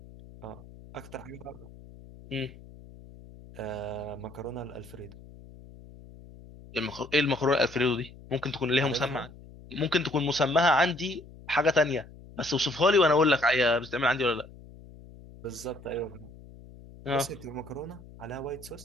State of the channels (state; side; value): noise; left; hum, 19 dB below the sound